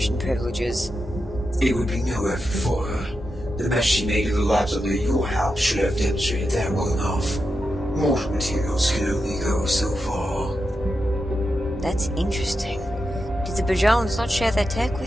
privileges. It would be no effort for her. The mess she made of the labs under your house should have demonstrated that well enough. Mortal materials can only go so far. That's interesting. Did the Bajans not share their tech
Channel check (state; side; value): normal; both; correlation 0.88